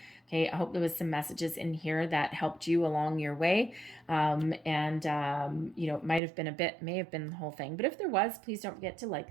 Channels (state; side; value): drops out; left; at 6.2 s